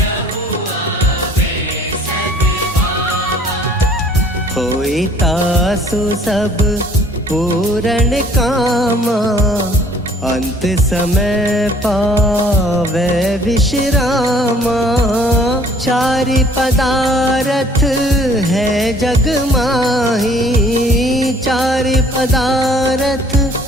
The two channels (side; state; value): both; normal; correlation 0.56